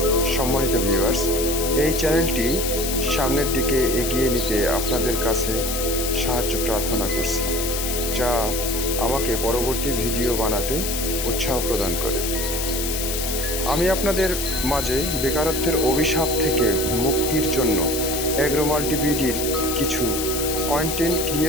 সম্মানিত ভিউয়ার্স, এই চ্যানেলটি সামনের দিকে এগিয়ে নিতে আপনাদের কাছে সাহায্য প্রার্থনা করছি, যা আমাকে পরবর্তী ভিডিও বানাতে উৎসাহ প্রদান করে। আমি আপনাদের মাঝে বেকারত্বের অভিশাপ থেকে মুক্তির জন্য অ্যাগ্রোমাল্টি বিডির কিছু কন্টেন্ট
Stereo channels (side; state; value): left; noise; hiss, 3 dB below the sound